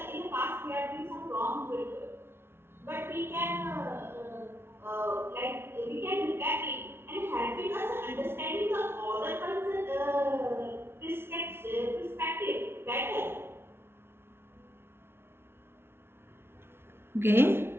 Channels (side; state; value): left; late; 0.12 ms